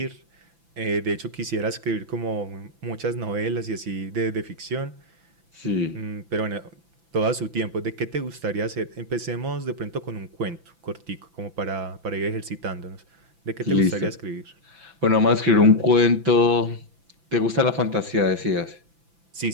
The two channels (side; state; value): left; late; 5.9 ms